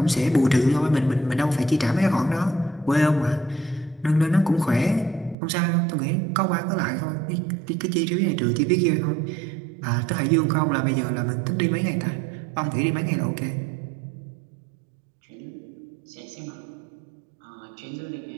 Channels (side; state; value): left; drops out; at 5.4 s